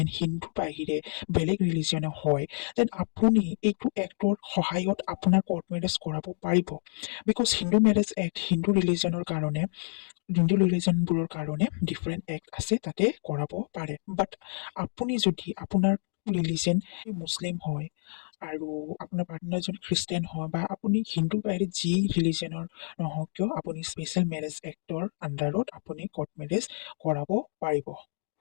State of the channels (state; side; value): silent; right; digital silence